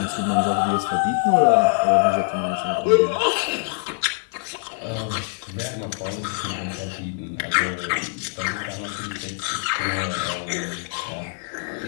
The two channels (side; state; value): right; silent; digital silence